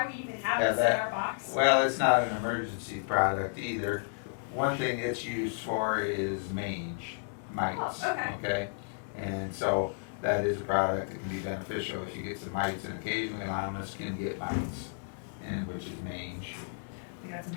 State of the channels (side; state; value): right; silent; digital silence